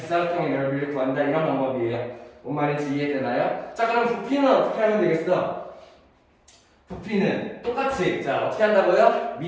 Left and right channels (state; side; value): identical; both; correlation 1.00